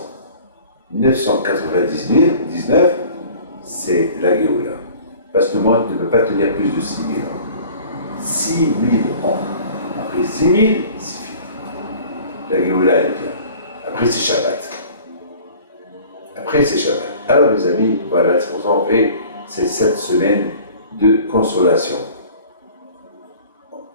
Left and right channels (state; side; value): inverted; both; correlation -0.47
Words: 999, c'est la Géoula. Parce que le monde ne peut pas tenir plus de 6000 ans. 6000 ans. Après 6000, c'est fini. La Géoula, elle vient. Après, c'est Shabbat. Alors, mes amis, voilà, c'est pour ça qu'on fait ces 7 semaines de consolation.